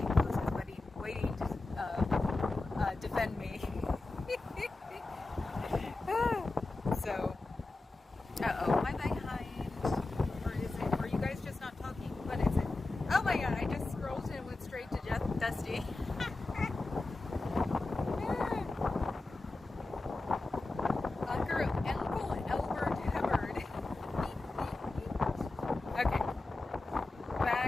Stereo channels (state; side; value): quieter; right; 3.2 dB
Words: poses, waiting to defend me. So, am I behind? Or is it? Are you guys just not talking? What is it? Oh my God! I just scrolled and went straight to Dusty. Uncle Albert Hubbard. Okay,